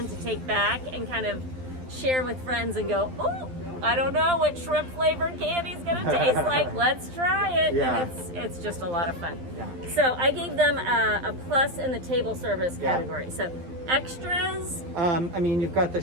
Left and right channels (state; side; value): late; left; 12 ms